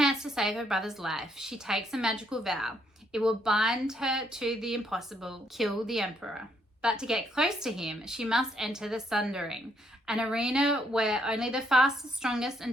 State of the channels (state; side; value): normal; both; correlation 0.72